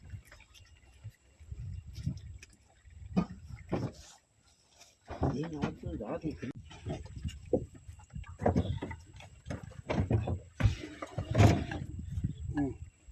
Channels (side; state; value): both; identical; correlation 1.00